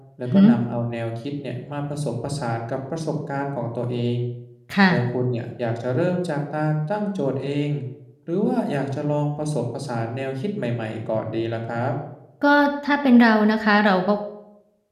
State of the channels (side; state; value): both; identical; correlation 1.00